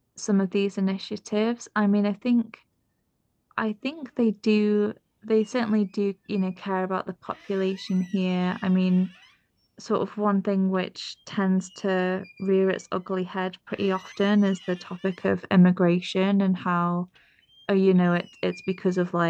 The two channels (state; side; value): identical; both; correlation 1.00